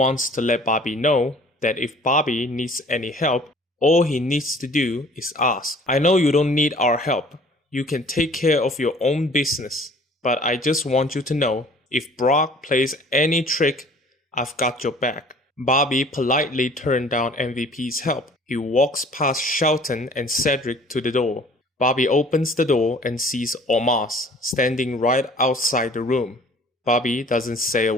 to let Bobby know that if Bobby needs any help, all he needs to do is ask. I know you don't need our help. You can take care of your own business. But I just want you to know, if Brock plays any trick, I've got your back. Bobby politely turned down MVP's help. He walks past Shelton and Cedric to the door. Bobby opens the door and sees Omos standing right outside the room. Bobby doesn't say a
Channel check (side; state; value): both; normal; correlation 0.51